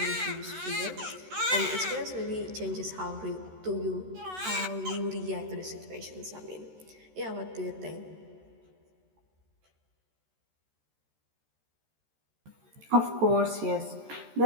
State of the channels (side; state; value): left; late; 13 ms